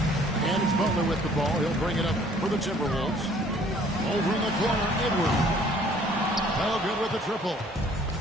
And it's Butler with the ball. He'll bring it up for the Timberwolves. Over in the corner, Edwards. Oh, good with the triple.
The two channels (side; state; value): both; normal; correlation 0.57